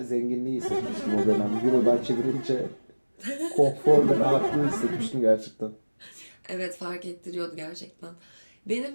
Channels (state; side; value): inverted; both; correlation -1.00